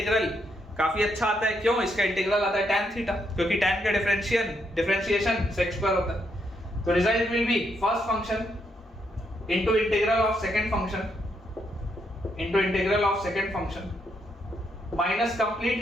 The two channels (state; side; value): normal; both; correlation 0.77